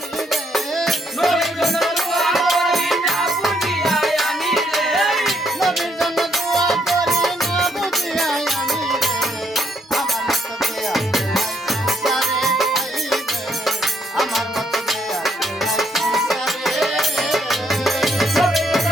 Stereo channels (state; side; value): normal; both; correlation 0.72